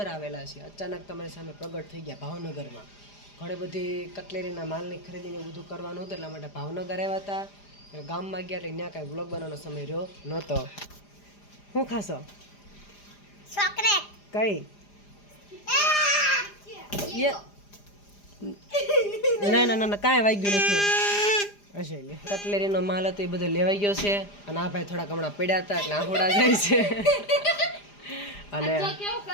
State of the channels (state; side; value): late; right; 4.9 ms